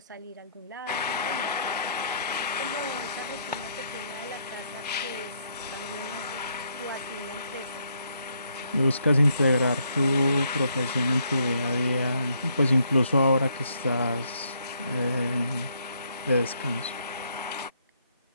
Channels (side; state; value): both; inverted; correlation -0.72